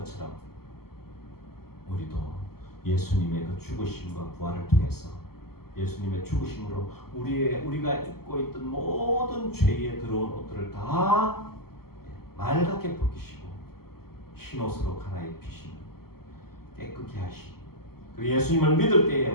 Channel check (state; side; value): late; right; 0.95 ms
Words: 우리도 예수님의 그 죽으심과 부활을 통해서 예수님의 죽으심으로 우리가 입고 있던 모든 죄에 들어온 옷들을 다 맑게 벗기시고 흰옷으로 갈아입히시는 깨끗게 하시고, 그리고 예수님을 믿을 때에